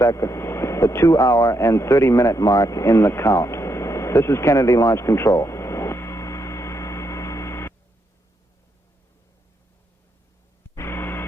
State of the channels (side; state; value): both; normal; correlation 0.79